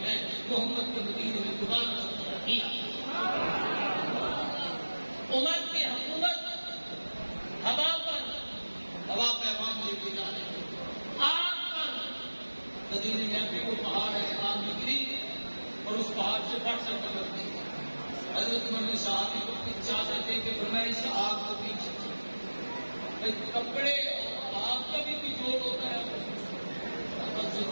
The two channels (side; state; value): both; inverted; correlation -1.00